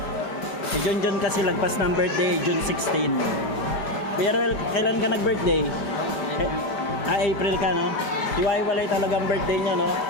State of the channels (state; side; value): late; right; 5.0 ms